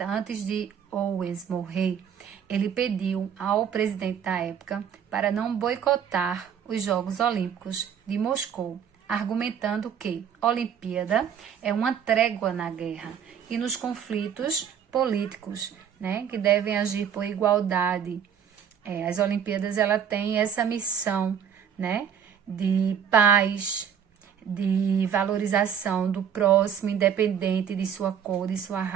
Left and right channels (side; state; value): left; quieter; 8.1 dB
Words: antes de Owens morrer, ele pediu ao presidente da época para não boicotar os Jogos Olímpicos de Moscou, argumentando que a Olimpíada é uma trégua na guerra e nos conflitos políticos, né? Que devem agir por igualdade. As Olimpíadas, ela tem essa missão, né, de paz, de valorização do próximo, independente de sua cor, de sua